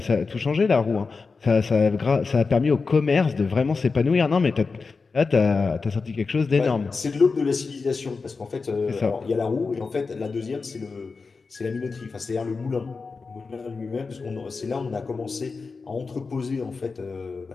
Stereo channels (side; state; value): right; quieter; 4.5 dB